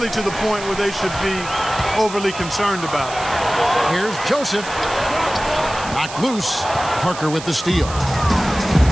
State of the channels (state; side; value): noise; right; hiss, 12 dB below the sound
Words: to the point where they should be overly concerned about it. Here's Joseph. Knocked loose. Parker with the steal.